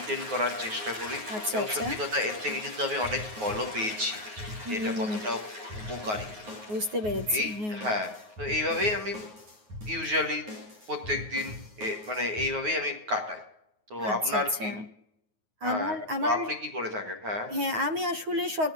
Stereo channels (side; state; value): left; late; 9.5 ms